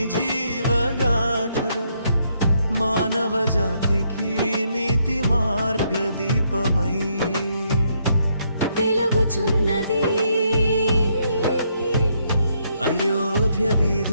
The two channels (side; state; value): both; inverted; correlation -0.74